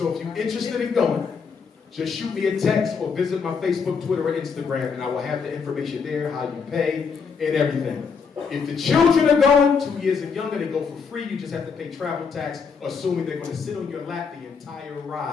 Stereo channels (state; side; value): quieter; right; 5.7 dB